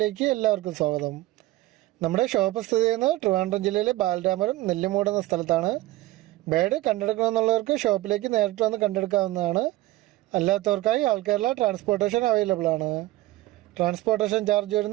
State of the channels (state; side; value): quieter; left; 17.8 dB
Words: എല്ലാവർക്കും സ്വാഗതം. നമ്മുടെ ഷോപ്പ് സ്ഥിതി ചെയ്യുന്നത് ട്രിവാൻഡ്രം ജില്ലയിലെ ബാലരാമപുരം നെല്ലിമൂട് എന്ന സ്ഥലത്താണ്. ബേഡ് കണ്ടെടുക്കണമെന്നുള്ളവർക്ക് ഷോപ്പിലേക്ക് നേരിട്ട് വന്ന് കണ്ടെടുക്കാവുന്നതാണ്. അല്ലാത്തവർക്കായി ആൾ കേരള ട്രാൻസ്പോർട്ടേഷൻ അവൈലബിൾ ആണ്. ട്രാൻസ്പോർട്ടേഷൻ ചാർജ്